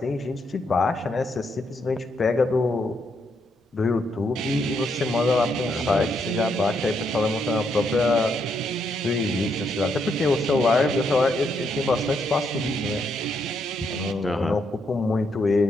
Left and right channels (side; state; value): both; normal; correlation 0.77